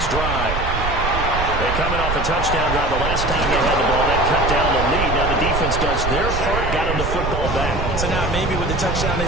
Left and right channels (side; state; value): right; noise; rumble, 3 dB below the sound